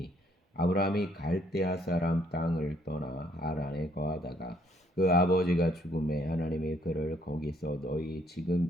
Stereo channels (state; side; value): normal; both; correlation 0.66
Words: 아브라함이 갈대아 사람 땅을 떠나 하란에 거하다가 그 아버지가 죽음에 하나님이 그를 거기서 너희